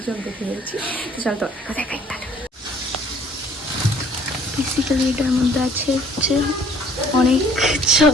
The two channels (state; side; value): normal; both; correlation 0.57